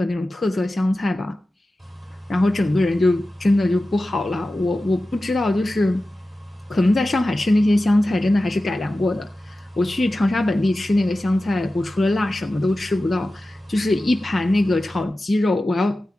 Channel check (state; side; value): normal; both; correlation 0.94